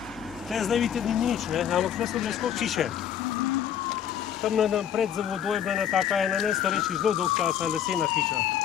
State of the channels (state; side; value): quieter; right; 9.5 dB